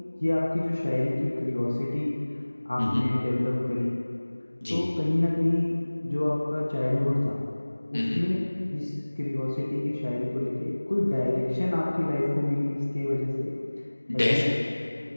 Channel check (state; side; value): inverted; both; correlation -1.00